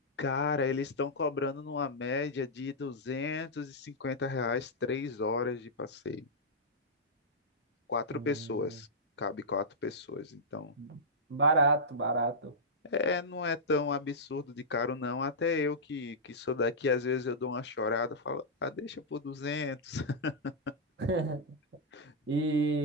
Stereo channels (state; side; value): normal; both; correlation -0.09